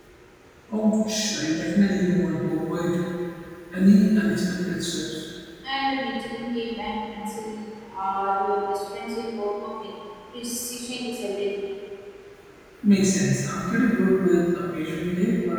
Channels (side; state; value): both; identical; correlation 1.00